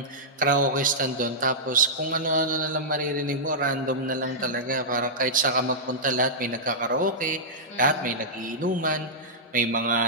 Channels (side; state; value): both; normal; correlation -0.13